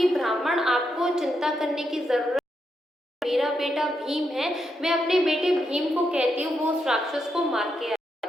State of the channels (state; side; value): normal; both; correlation 0.82